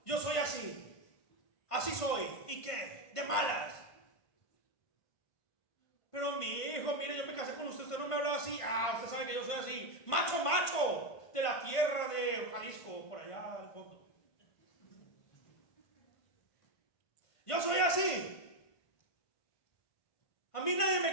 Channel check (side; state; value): right; late; 1.5 ms